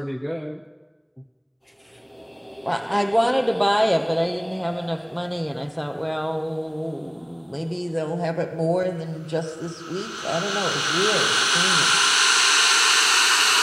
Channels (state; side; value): identical; both; correlation 1.00